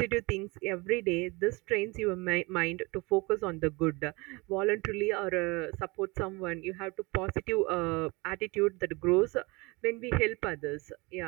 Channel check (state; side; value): quieter; left; 25.6 dB